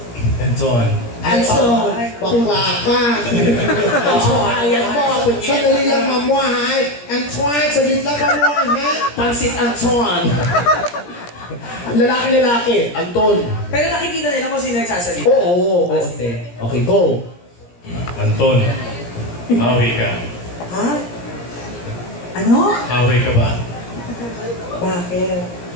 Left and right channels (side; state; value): right; late; 17 ms